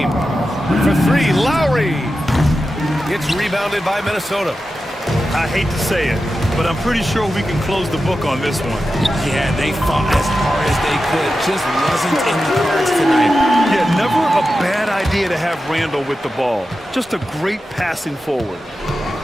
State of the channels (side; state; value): both; normal; correlation 0.91